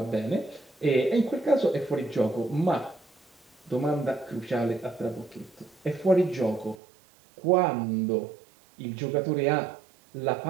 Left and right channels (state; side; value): drops out; left; at 6.8 s